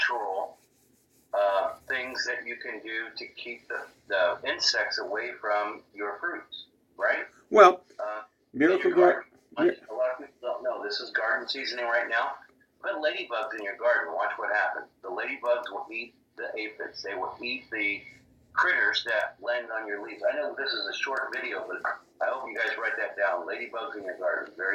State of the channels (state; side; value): identical; both; correlation 1.00